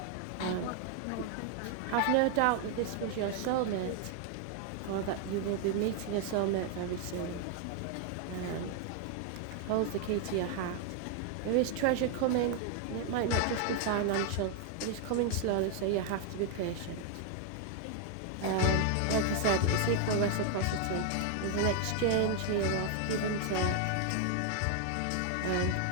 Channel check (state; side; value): different; both; correlation 0.00